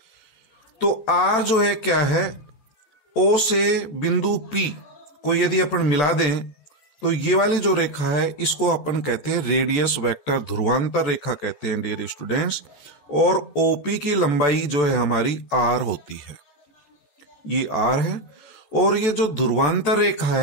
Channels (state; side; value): late; right; 14 ms